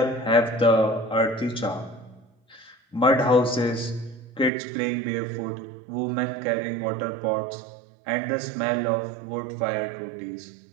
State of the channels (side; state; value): left; drops out; at 4.5 s